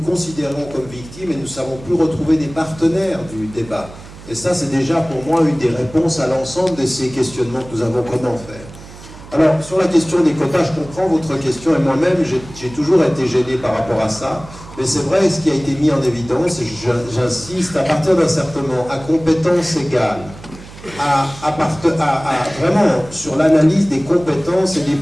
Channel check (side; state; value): right; noise; hum, 17 dB below the sound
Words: comme victimes et nous ne savons plus retrouver des partenaires du débat. Et ça, c'est déjà pour moi une des réponses à l'ensemble de ces questionnements que nous avons. Comment faire? Alors, sur la question des quotas, je comprends votre question, et moi-même, j'ai toujours été gêné par rapport à ça. Mais c'est vrai, ce qui a été mis en évidence, et j'insiste, à partir d'un certain moment, à compétences égales, vraiment sur l'analyse des compétences et des